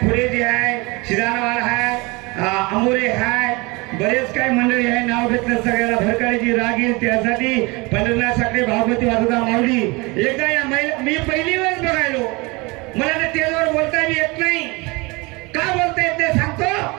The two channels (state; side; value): quieter; left; 25.6 dB